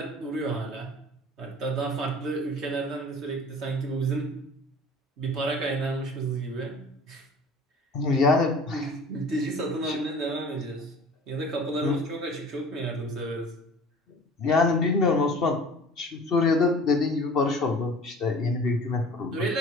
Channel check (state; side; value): normal; both; correlation 0.44